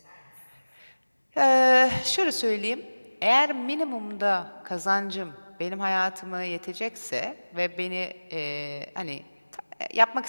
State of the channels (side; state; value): both; inverted; correlation -1.00